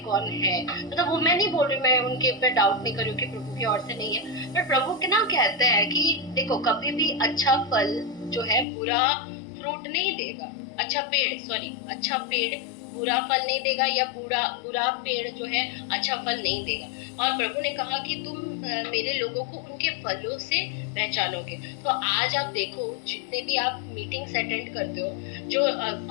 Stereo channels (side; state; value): right; drops out; at 8.7 s